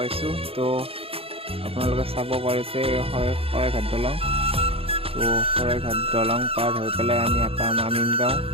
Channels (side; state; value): left; late; 0.27 ms